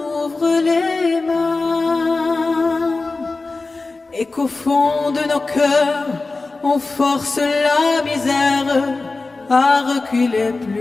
les mains. Et qu'au fond de nos cœurs, on force la misère à reculer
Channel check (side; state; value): right; quieter; 3.6 dB